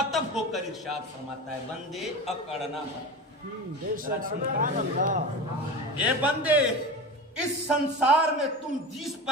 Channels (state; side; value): normal; both; correlation 0.28